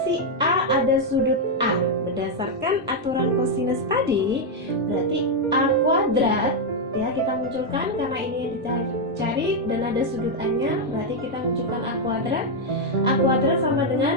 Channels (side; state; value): both; normal; correlation 0.01